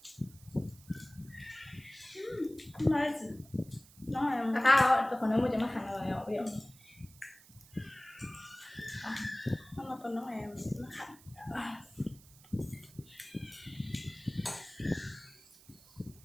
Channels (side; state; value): right; noise; hiss, 23 dB below the sound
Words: Nó là tao còn nếu mà cho nó hành rồi bây giờ nó còn nó em nó hẳn.